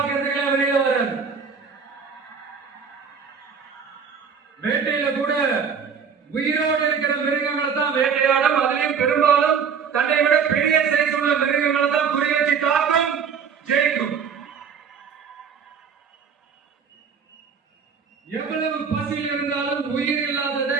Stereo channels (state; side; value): quieter; left; 6.4 dB